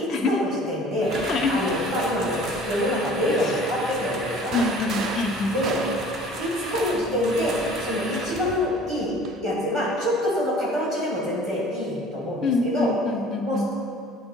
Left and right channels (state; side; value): normal; both; correlation 0.48